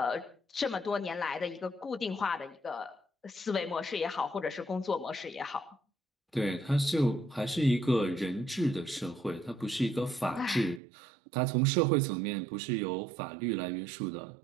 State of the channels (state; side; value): drops out; left; at 10.8 s